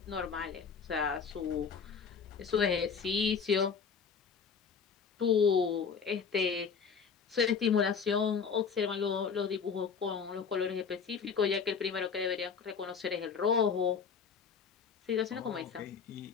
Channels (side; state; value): right; quieter; 6.1 dB